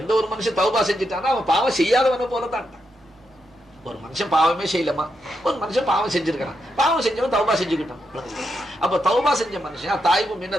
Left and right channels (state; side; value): normal; both; correlation 0.83